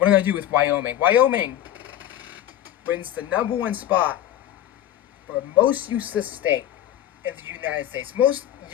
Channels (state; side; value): quieter; right; 11.9 dB